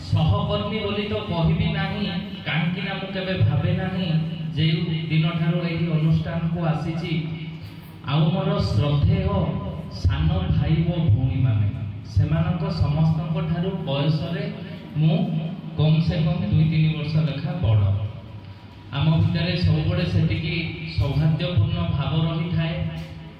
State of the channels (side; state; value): both; identical; correlation 1.00